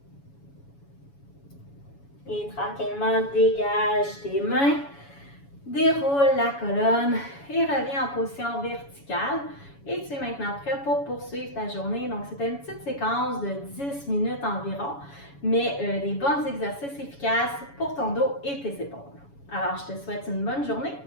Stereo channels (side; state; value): right; late; 7.1 ms